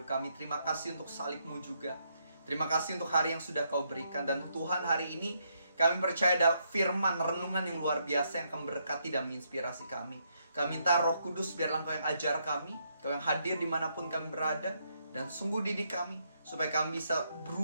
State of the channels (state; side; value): inverted; both; correlation -0.76